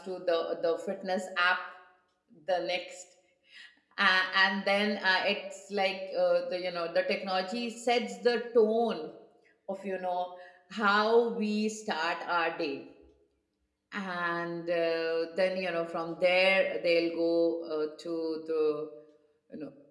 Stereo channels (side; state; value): both; identical; correlation 1.00